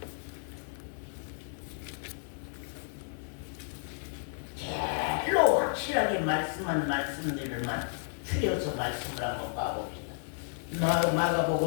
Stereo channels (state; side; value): silent; right; digital silence